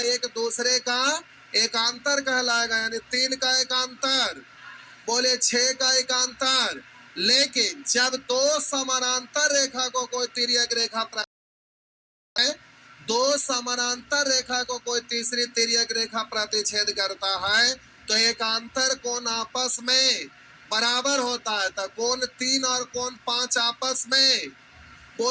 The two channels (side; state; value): both; identical; correlation 1.00